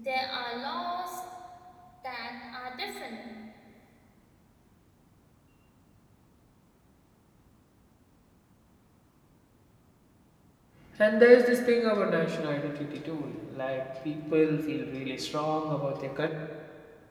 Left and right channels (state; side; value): identical; both; correlation 1.00